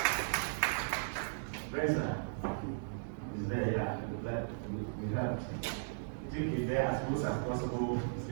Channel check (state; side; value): silent; left; digital silence